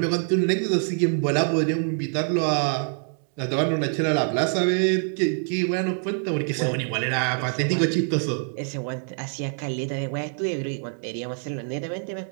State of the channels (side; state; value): left; silent; 56 dB below the other